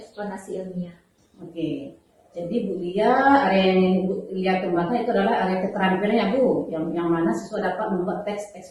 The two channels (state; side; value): identical; both; correlation 1.00